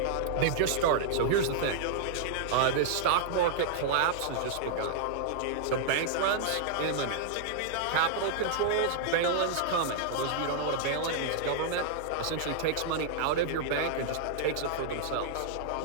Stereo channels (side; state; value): both; different; correlation -0.01